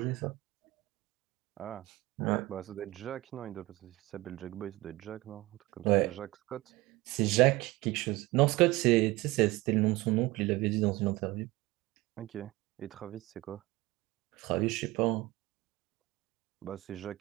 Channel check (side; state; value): left; quieter; 20.2 dB